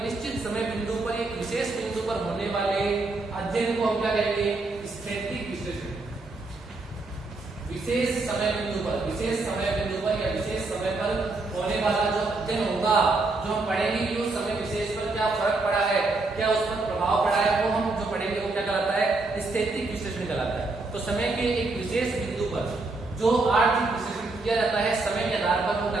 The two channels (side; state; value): left; quieter; 3.4 dB